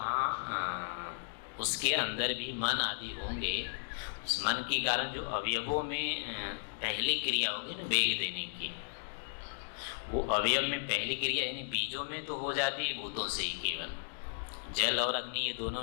उसके अंदर भी मन आदि होंगे। उस मन के कारण जो अवयवों में पहली क्रिया होगी ना वेग देने की, वो अवयव में पहली क्रिया यानी बीजों में तो हो जाती है भूतों से ही, केवल जल और अग्नि ये दोनों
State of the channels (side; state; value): right; silent; digital silence